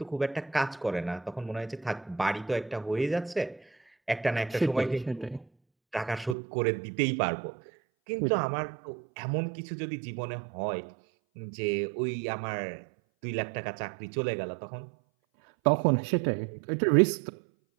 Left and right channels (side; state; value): left; drops out; at 6.4 s